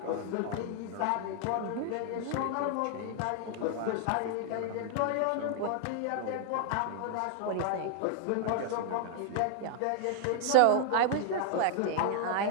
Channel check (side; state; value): both; different; correlation 0.00